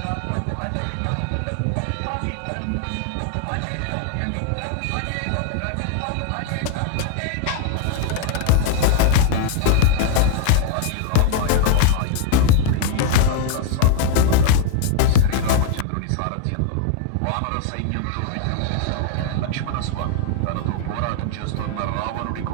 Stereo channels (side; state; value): both; different; correlation 0.00